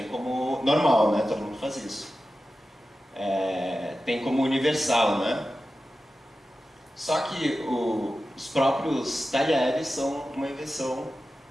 como normal, né? Todo mundo faz isso. Tem como universal, né? Só que os próprios talheres são uma invenção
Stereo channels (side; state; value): both; normal; correlation 0.93